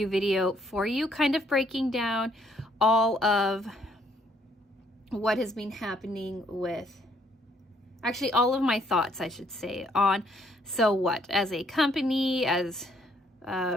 video for you, kind of breaking down all of what has been happening with, actually all of my thoughts, I should say, on So What as a company, as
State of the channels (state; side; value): normal; both; correlation 0.67